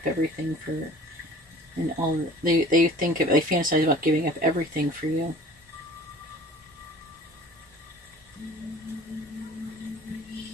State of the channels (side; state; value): both; normal; correlation 0.46